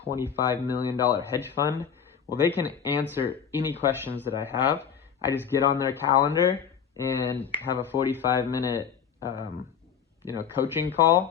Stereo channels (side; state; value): right; quieter; 7.6 dB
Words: million hedge fund. Well, they can answer any questions that I have. I just get on their calendar and have a 45-minute coaching